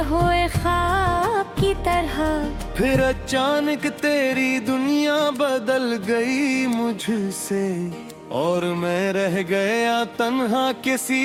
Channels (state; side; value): identical; both; correlation 1.00